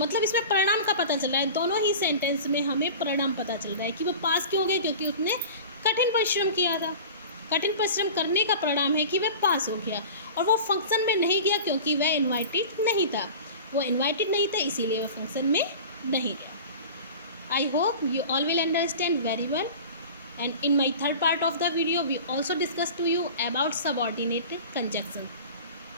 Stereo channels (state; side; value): inverted; both; correlation -0.37